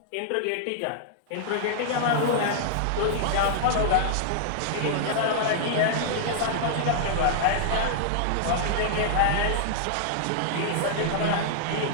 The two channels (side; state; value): both; different; correlation -0.01